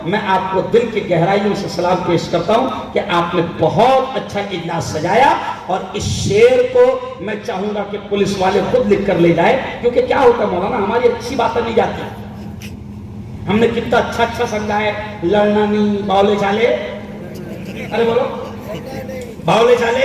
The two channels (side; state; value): both; identical; correlation 1.00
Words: میں آپ کو دل کی گہرائیوں سے سلام پیش کرتا ہوں کہ آپ نے بہت اچھا اجلاس سجایا، اور اس شعر کو میں چاہوں گا کہ پولیس والے خود لکھ کر لے جائے، کیونکہ کیا ہوتا ہے مولانا، ہماری اچھی باتیں نہیں جاتی، ہم نے کتنا اچھا سمجھا ہے، لڑنا نہیں، باولے چالے، ارے بولو باولے